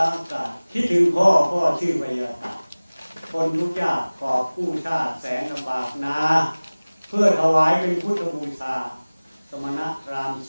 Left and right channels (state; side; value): inverted; both; correlation -1.00